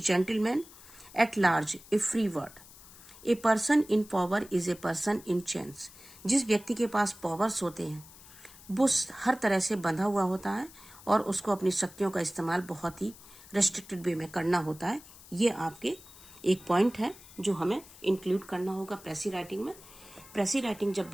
at large, a free word. A person in power is a person in chains. जिस व्यक्ति के पास पावर्स होते हैं वो हर तरह से बंधा हुआ होता है और उसको अपनी शक्तियों का इस्तेमाल बहुत ही रेस्ट्रिक्टेड वे में करना होता है। ये आपके एक पॉइंट है जो हमें इंक्लूड करना होगा प्रेसी राइटिंग में। प्रेसी राइटिंग जब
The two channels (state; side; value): noise; left; hiss, 20 dB below the sound